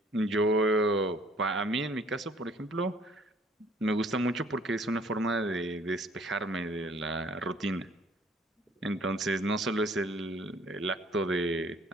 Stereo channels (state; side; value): normal; both; correlation 0.58